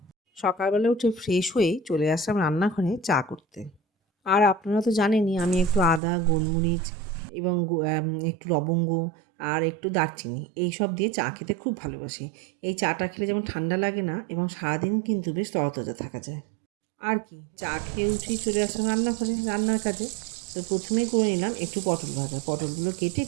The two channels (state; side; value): drops out; left; at 6.0 s